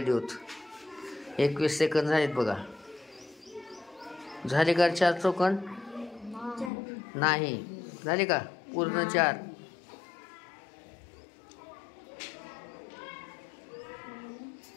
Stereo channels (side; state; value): right; drops out; at 6.7 s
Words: देऊत. 21 सेकंद झालेत बघा. झाले का 4 चौकोन? नाही. झाले का पूर्ण 4?